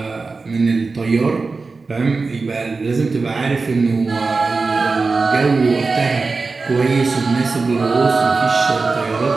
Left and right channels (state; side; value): quieter; left; 4.1 dB